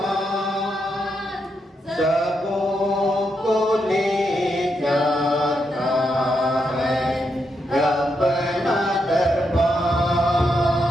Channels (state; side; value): normal; both; correlation 0.82